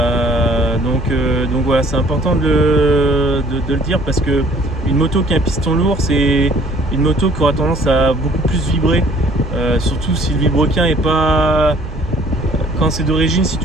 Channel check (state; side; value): normal; both; correlation 0.56